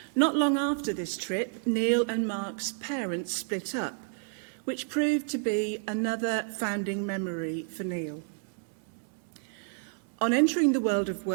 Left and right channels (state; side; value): silent; left; 58 dB below the other